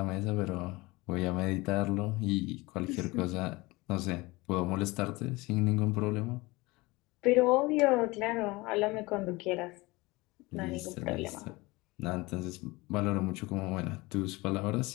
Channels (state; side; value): quieter; right; 22.6 dB